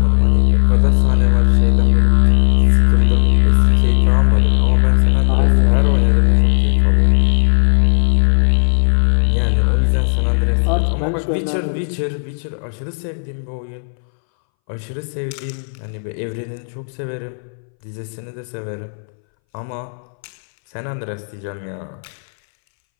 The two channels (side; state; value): right; silent; 66 dB below the other